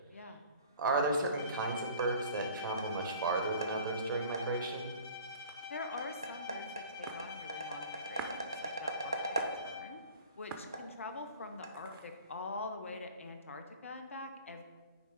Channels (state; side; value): inverted; both; correlation -0.45